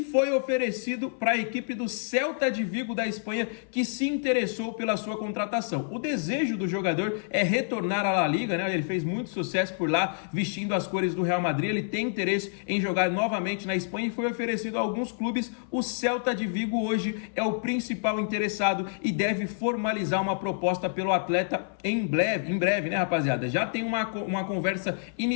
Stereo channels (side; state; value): right; silent; 57 dB below the other